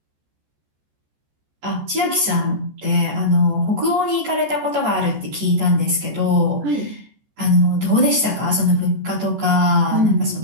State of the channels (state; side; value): late; left; 14 ms